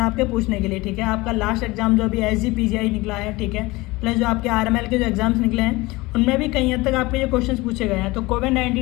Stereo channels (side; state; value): right; quieter; 21.6 dB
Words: हैं आपके पूछने के लिए, ठीक है। आपका लास्ट एग्जाम जो अभी SGPGI निकला है, ठीक है, प्लस जो आपके RML के जो एग्जाम्स निकले हैं उनमें भी कहीं हद तक आपके जो क्वेश्चंस पूछे गए हैं। तो